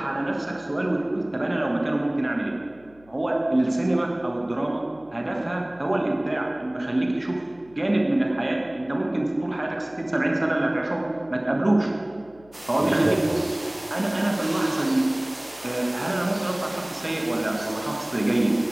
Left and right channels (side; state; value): left; noise; hum, 28 dB below the sound